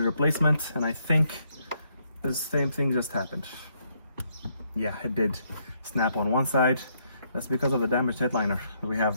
replacement, and I think the same thing just happened. Yeah, it did snap on one side. That's because of the damaged headliner. We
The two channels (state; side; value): inverted; both; correlation -0.73